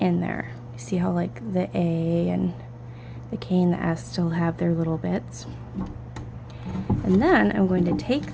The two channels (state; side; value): identical; both; correlation 1.00